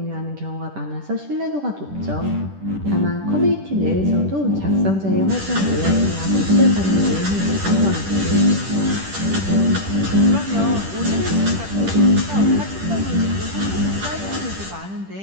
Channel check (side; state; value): left; late; 10 ms